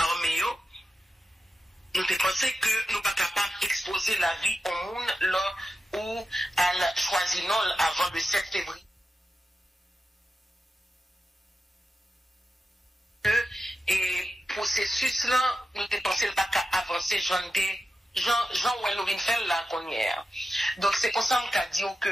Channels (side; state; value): both; normal; correlation 0.91